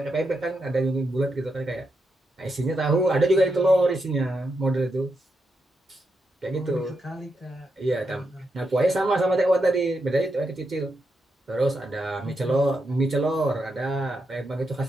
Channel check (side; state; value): both; normal; correlation 0.84